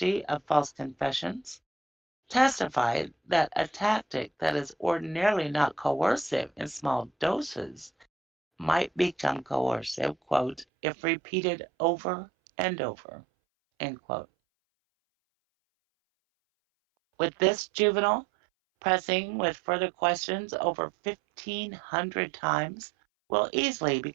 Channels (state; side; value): drops out; left; at 10.7 s